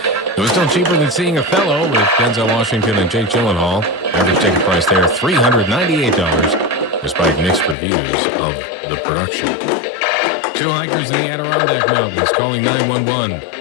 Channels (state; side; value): drops out; right; at 7.8 s